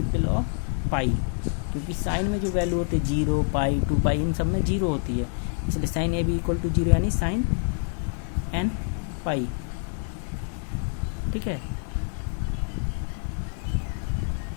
ऑफ पाई, क्योंकि साइन में जो वैल्यू होती है 0 पाई 2 पाई इन सब में 0 होती है, इसलिए sine A B equal to 0 यानी साइन एन पाई। ठीक है,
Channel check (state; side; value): silent; right; 55 dB below the other